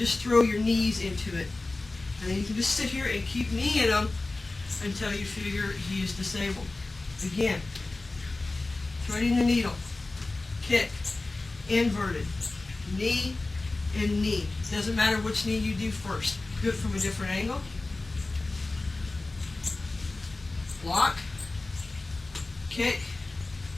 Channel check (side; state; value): right; quieter; 3.2 dB